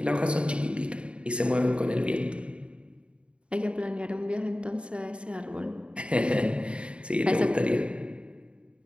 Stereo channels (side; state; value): left; late; 0.057 ms